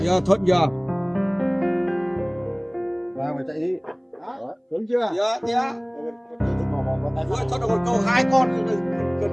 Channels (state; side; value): identical; both; correlation 1.00